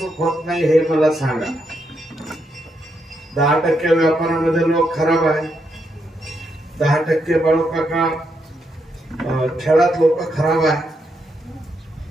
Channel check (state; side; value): normal; both; correlation 0.80